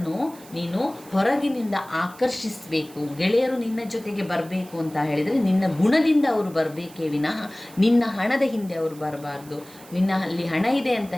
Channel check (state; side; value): noise; right; hiss, 22 dB below the sound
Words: ನೀನು ಹೊರಗಿನಿಂದ ಆಕರ್ಷಿಸಬೇಕು. ಗೆಳೆಯರು ನಿನ್ನ ಜೊತೆಗೆ ಬರಬೇಕು ಅಂತ ಹೇಳಿದರೆ ನಿನ್ನ ಗುಣದಿಂದ ಅವರು ಬರಬೇಕೇ ವಿನಃ ನಿನ್ನ ಹಣದ ಹಿಂದೆ ಅವರು ಬರಬಾರ್ದು. ನಿನ್ನ ಅಲ್ಲಿ ಹಣ ಇದೆ ಅಂತ